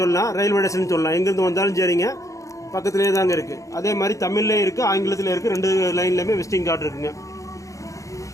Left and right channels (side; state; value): right; late; 0.16 ms